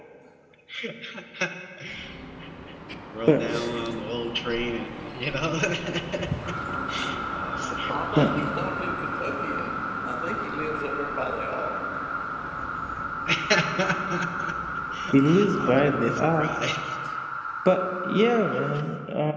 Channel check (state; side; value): identical; both; correlation 1.00